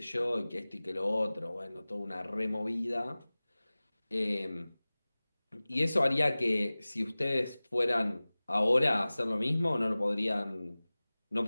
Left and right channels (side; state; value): both; inverted; correlation -0.99